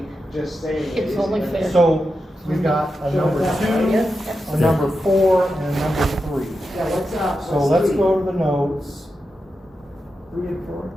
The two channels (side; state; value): both; normal; correlation 0.89